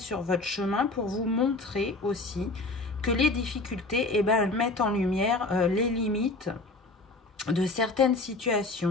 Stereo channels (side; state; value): right; quieter; 3.2 dB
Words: votre chemin? Pour vous montrer aussi que les difficultés, eh ben, elles mettent en lumière les limites de certaines